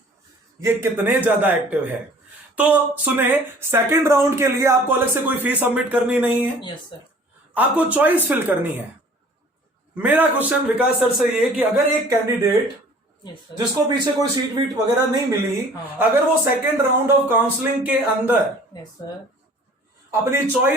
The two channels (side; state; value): both; normal; correlation 0.50